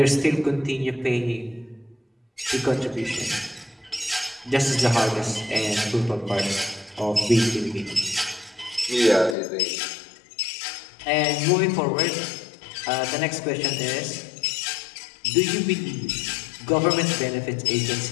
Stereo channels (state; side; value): drops out; right; at 9.3 s